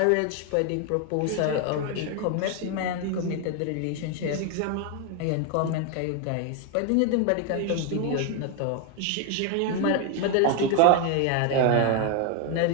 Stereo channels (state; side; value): different; both; correlation 0.01